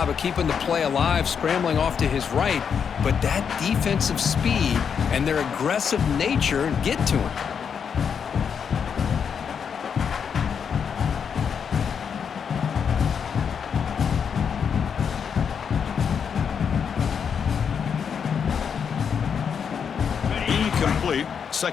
of keeping the play alive, scrambling off to his right, but that defensive speed and their aggressive nature get to him.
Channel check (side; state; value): right; quieter; 7.0 dB